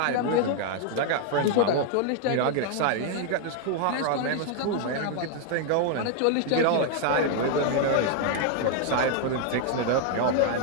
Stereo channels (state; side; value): different; both; correlation 0.00